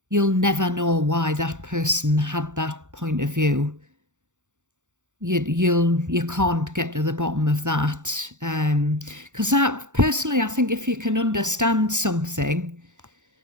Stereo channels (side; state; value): left; late; 0.85 ms